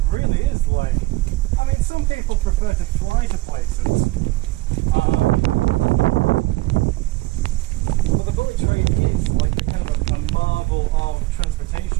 really is like. I mean, some people prefer to fly to places, but the bullet train is like a kind of a marvel of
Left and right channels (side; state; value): left; quieter; 19.8 dB